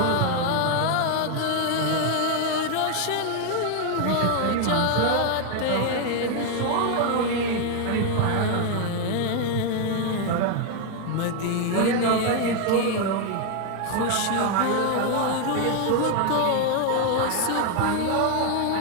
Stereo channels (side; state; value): both; different; correlation 0.01